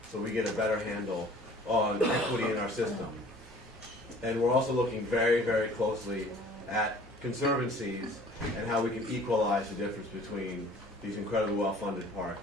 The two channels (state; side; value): normal; both; correlation 0.50